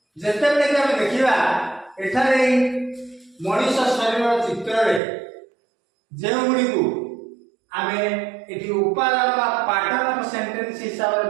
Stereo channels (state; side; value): drops out; left; at 5.0 s